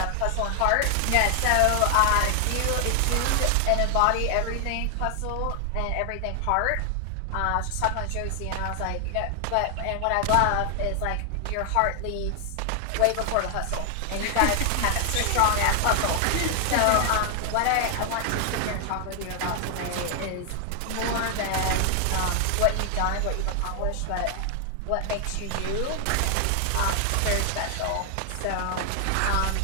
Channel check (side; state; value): both; different; correlation 0.00